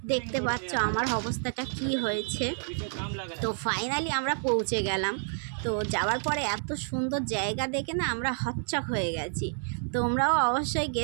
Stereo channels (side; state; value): left; silent; 58 dB below the other